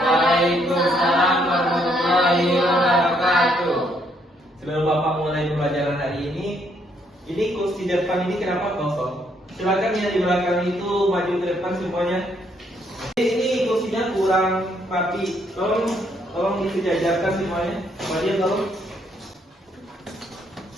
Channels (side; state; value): both; normal; correlation 0.71